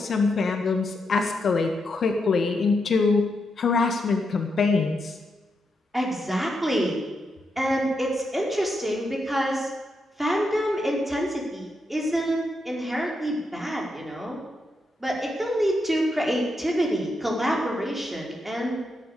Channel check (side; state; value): both; normal; correlation 0.83